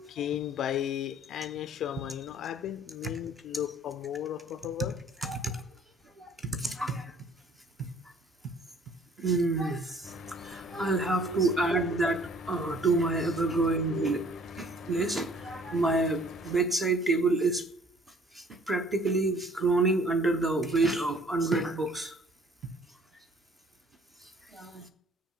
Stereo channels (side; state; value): both; normal; correlation 0.56